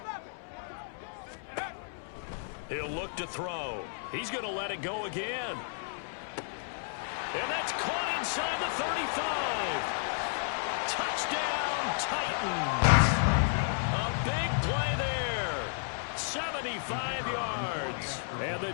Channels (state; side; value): silent; right; 56 dB below the other